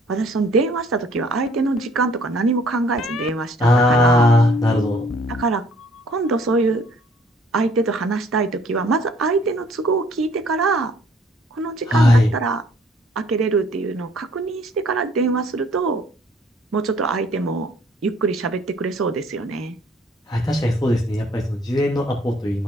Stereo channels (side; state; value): both; normal; correlation 0.59